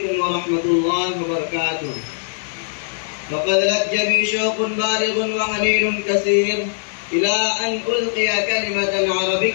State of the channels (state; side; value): silent; right; digital silence